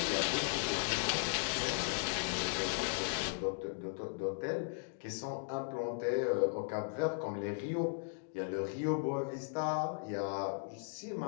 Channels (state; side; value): silent; right; digital silence